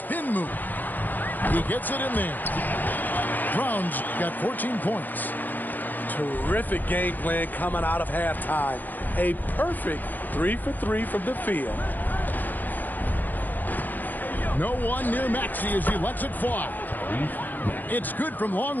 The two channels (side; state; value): right; late; 0.088 ms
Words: move. He gets it in there. Brown's got 14 points. Terrific game plan coming out of halftime. A perfect 3 for 3 from the field. No one near Maxey as he lets it fly. It's good from long